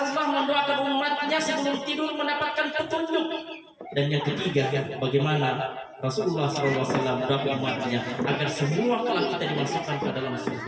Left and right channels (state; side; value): identical; both; correlation 1.00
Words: mendoakan umatnya sebelum tidur mendapatkan petunjuk. Dan yang ketiga, bagaimana Rasulullah SAW mendoakan umatnya agar semua kelak kita dimasukkan ke dalam